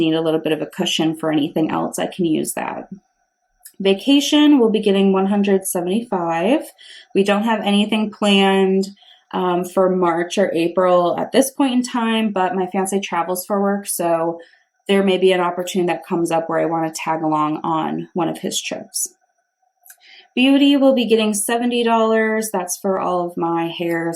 a little bit of a cushion for anything else, I can use that. Vacation, we'll be getting $175. We don't have anything planned for March or April at this point in time, but my fiance travels for work, so there may be an opportunity that comes up where I want to tag along on one of his trips. Beauty will be getting $70. That's for all of my hair,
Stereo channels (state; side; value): identical; both; correlation 1.00